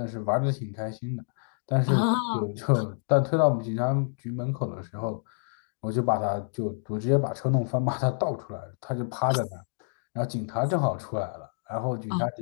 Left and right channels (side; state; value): right; silent; digital silence